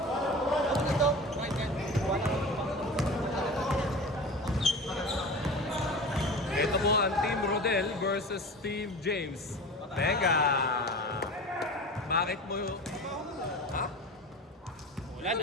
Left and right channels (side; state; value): both; normal; correlation 0.33